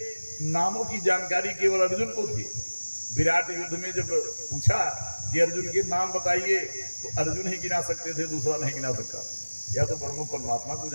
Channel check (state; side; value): inverted; both; correlation -1.00